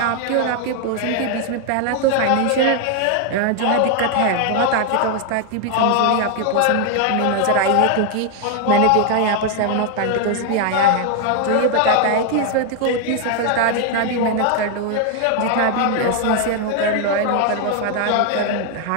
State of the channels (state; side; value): different; both; correlation 0.00